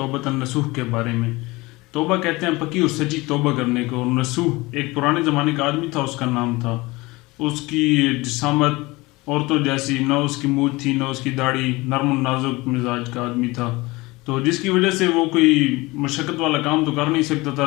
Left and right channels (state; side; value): quieter; right; 22.3 dB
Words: النصوح کے بارے میں۔ توبہ کہتے ہیں پکی اور سچی توبہ کرنے کو، اور نصوح ایک پرانے زمانے کا آدمی تھا، اس کا نام تھا۔ اس کی جسامت عورتوں جیسی نہ، اس کی مونچھ تھی نہ اس کی داڑھی، نرم و نازک مزاج کا آدمی تھا، تو جس کی وجہ سے وہ کوئی مشقت والا کام تو کر نہیں سکتا تھا،